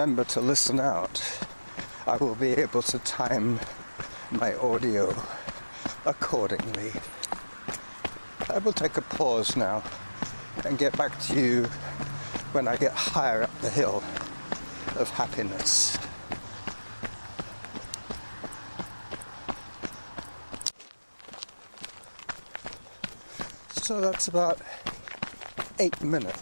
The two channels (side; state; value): both; inverted; correlation -1.00